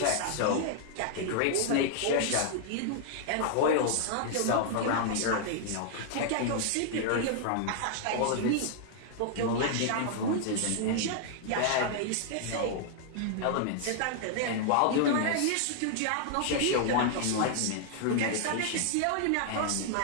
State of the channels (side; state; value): both; different; correlation -0.01